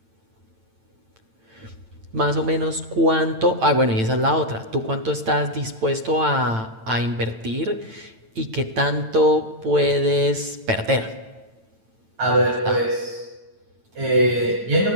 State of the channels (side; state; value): left; late; 9.0 ms